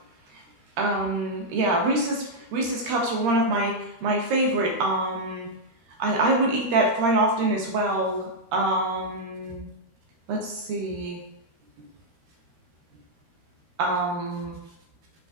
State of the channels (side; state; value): left; late; 13 ms